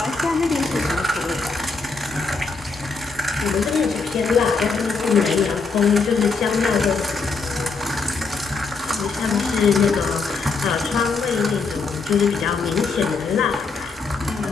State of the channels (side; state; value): right; quieter; 4.4 dB